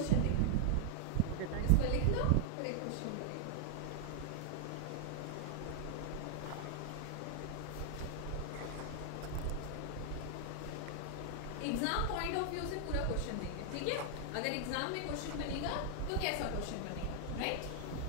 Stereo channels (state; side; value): different; both; correlation 0.00